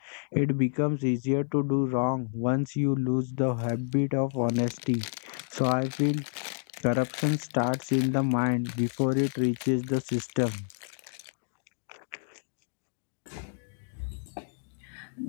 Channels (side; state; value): right; silent; digital silence